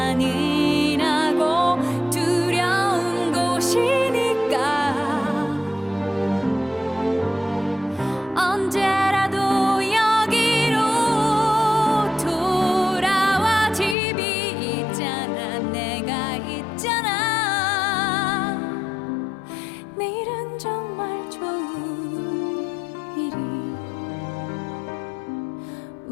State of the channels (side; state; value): right; drops out; at 14.0 s